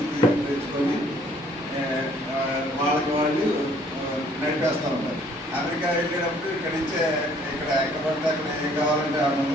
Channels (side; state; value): both; normal; correlation 0.60